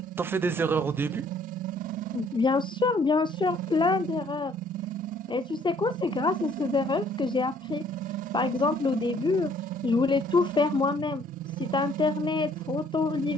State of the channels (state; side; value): normal; both; correlation 0.61